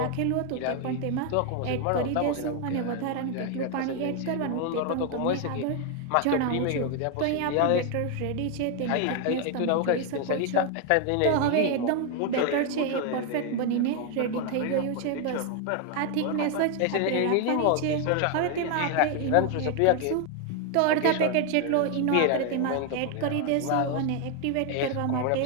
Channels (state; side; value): different; both; correlation 0.01